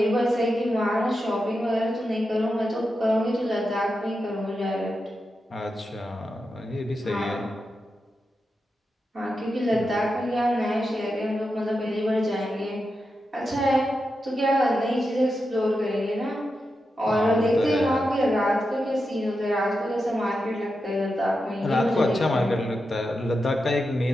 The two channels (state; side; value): normal; both; correlation 0.88